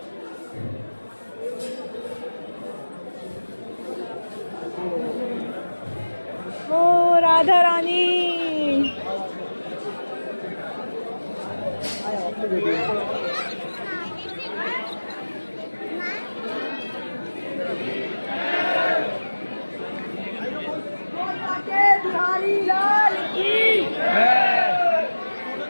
ओ राधा रानी। लाल की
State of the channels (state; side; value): inverted; both; correlation -1.00